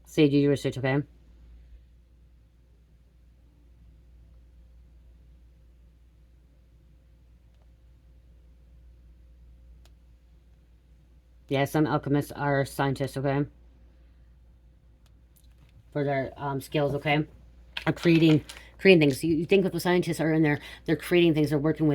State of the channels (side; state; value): both; identical; correlation 1.00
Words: Say do your research, okay? Yeah, some alchemists are scientists, okay? For their skills, okay? Are creating things. You think if the scientists are in there, they're creating things, they're working